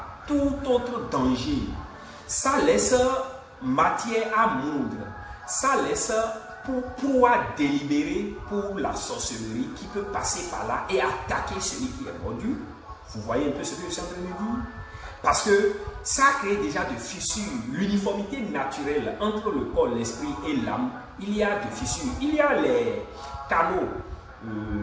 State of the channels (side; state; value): both; identical; correlation 1.00